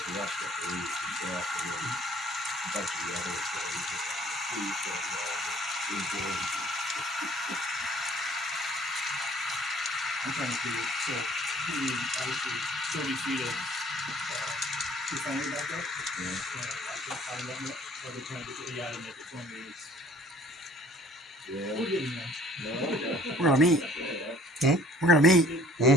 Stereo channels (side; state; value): both; normal; correlation 0.56